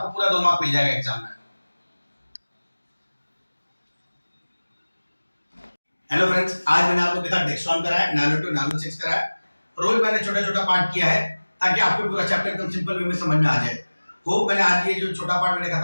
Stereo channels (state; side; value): inverted; both; correlation -1.00